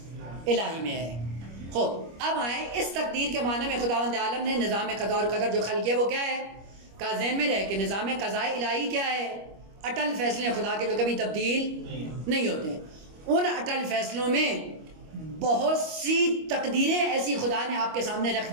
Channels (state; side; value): late; left; 25 ms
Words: میں ہے. خوب اب آئیں اس تقدیر کے معنی میں خداوند عالم نے نظام قضا اور قدر جو خلق کیا وہ کیا ہے؟ کا ذہن میں رہے کہ نظام قضاء الہی کیا ہے؟ اٹل فیصلے خدا کے جو کبھی تبدیل نہیں ہوتے. ان اٹل فیصلوں میں بہت سی تقدیریں ایسی خدا نے آپ کے سامنے رکھ